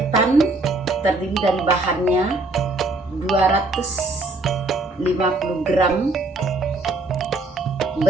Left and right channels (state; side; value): quieter; left; 3.0 dB